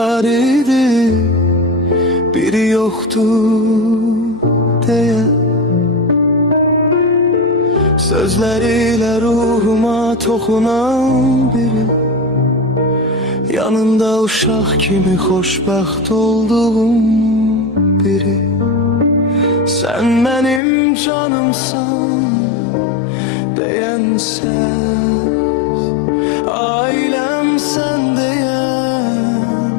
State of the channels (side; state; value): right; drops out; at 20.6 s